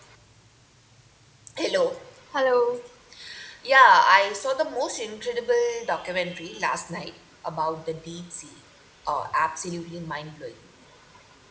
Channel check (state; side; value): identical; both; correlation 1.00